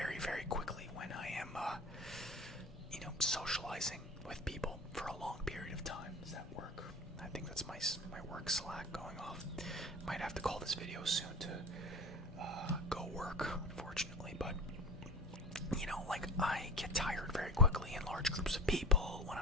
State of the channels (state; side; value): normal; both; correlation 0.32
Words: very quickly when I am, socializing with people for a long period of time. Does that work? I think that's my work Slack going off. Might have to call this video soon to go work, unfortunately. But like, I get tired very quickly in large groups of people when